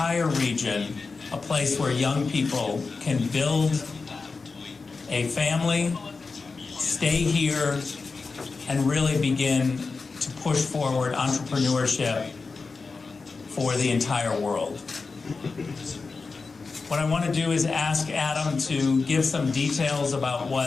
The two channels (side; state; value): right; quieter; 4.3 dB